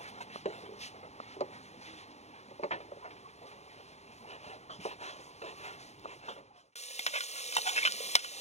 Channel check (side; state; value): right; late; 0.32 ms